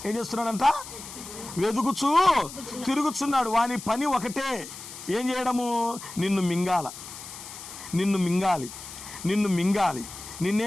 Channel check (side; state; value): left; noise; hiss, 13 dB below the sound